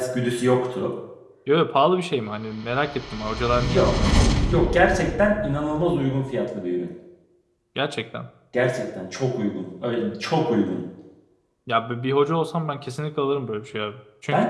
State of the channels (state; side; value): identical; both; correlation 1.00